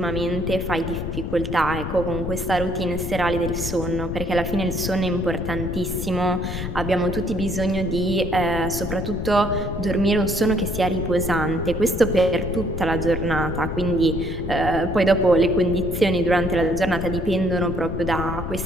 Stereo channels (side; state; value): left; noise; rumble, 5 dB below the sound